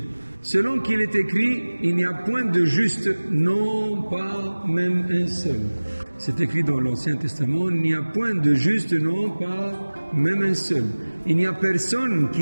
Selon qu'il est écrit, il n'y a point de juste, non pas même un seul. C'est écrit dans l'Ancien Testament, il n'y a point de juste, non pas même un seul. Il n'y a personne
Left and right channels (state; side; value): inverted; both; correlation -1.00